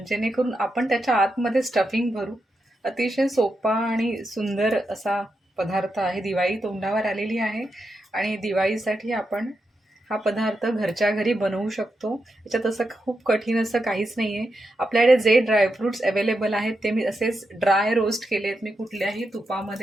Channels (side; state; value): both; normal; correlation 0.86